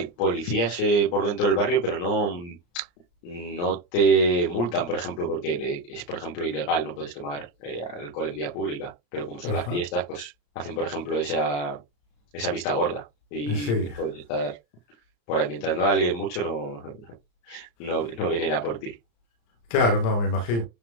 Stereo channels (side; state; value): right; late; 35 ms